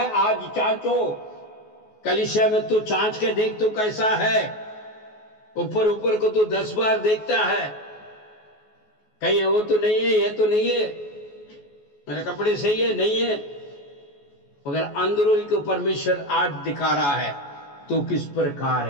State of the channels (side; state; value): right; late; 14 ms